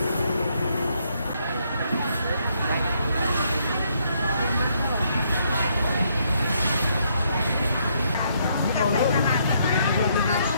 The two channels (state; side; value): inverted; both; correlation -0.72